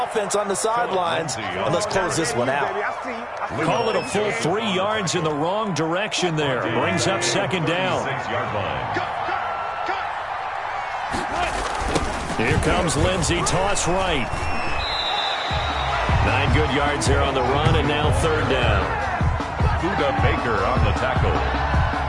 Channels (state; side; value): identical; both; correlation 1.00